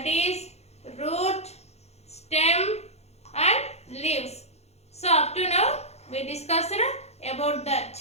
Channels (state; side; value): late; right; 0.31 ms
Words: is root, stem and leaves. So, up to now, we discussed about